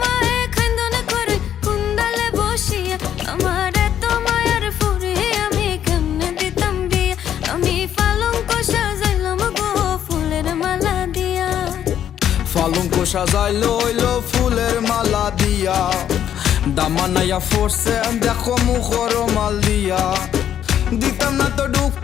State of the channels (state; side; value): quieter; right; 10.1 dB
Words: মায়ে খান্দনে করে কুন্দালে বসিয়া। আমার এত মায়ার ফুরে আমি কেমনে দিতাম বিয়া। আমি পালঙ্ক সাজাইলাম গো ফুলের মালা দিয়া। পালঙ্ক সাজাইলো হইলো ফুলের মালা দিয়া। দামানাইয়া ফোরছে দেখো মুখর মাল দিয়া। দিতাম না তো